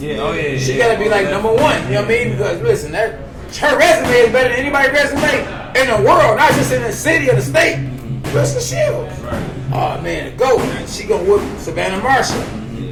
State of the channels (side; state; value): both; identical; correlation 1.00